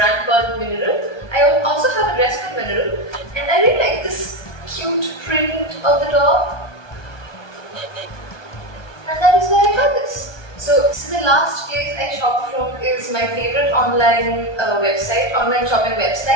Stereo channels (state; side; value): late; right; 1.2 ms